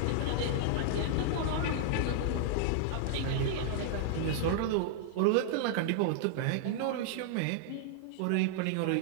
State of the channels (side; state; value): both; different; correlation -0.01